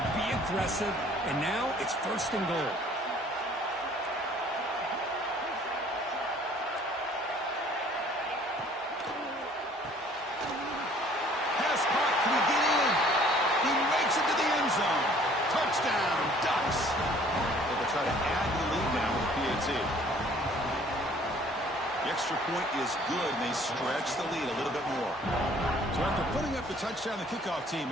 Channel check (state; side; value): normal; both; correlation 0.56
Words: be aggressive. And now it's first and goal. Pass caught. Can he get in? He makes it to the end zone. Touchdown, Ducks. They'll try to add the lead now with a PAT. The extra point is good, and they stretch the lead a little bit more. So after putting up the touchdown, the kickoff team